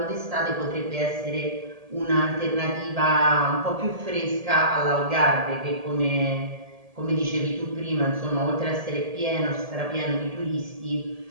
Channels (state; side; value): late; left; 1.7 ms